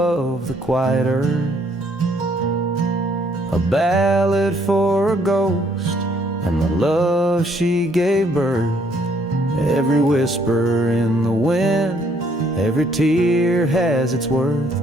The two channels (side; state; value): both; normal; correlation 0.66